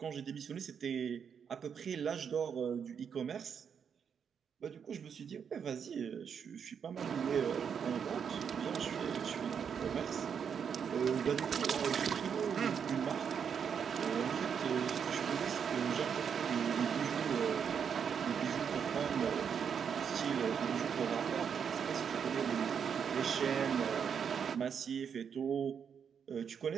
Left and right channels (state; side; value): quieter; left; 7.2 dB